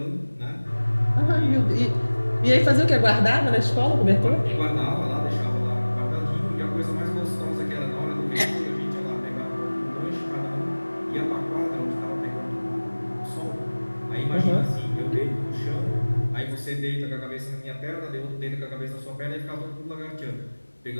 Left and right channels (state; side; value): inverted; both; correlation -1.00